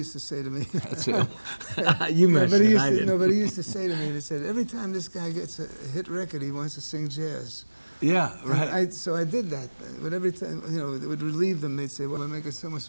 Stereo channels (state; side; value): inverted; both; correlation -1.00